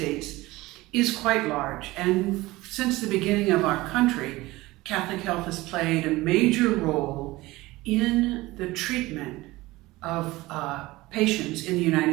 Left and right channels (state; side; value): quieter; left; 19.6 dB